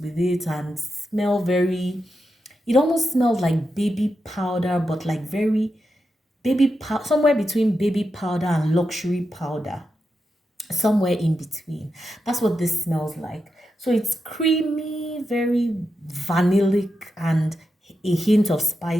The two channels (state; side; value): normal; both; correlation 0.87